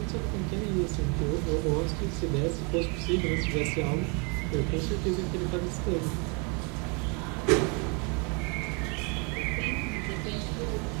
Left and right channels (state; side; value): quieter; left; 33.5 dB